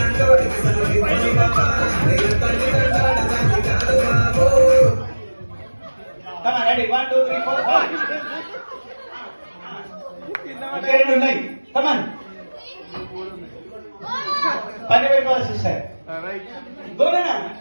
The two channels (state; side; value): inverted; both; correlation -1.00